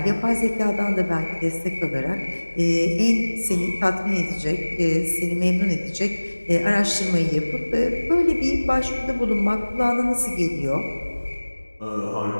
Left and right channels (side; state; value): both; inverted; correlation -1.00